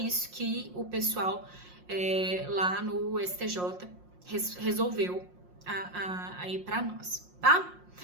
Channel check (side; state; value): left; late; 5.6 ms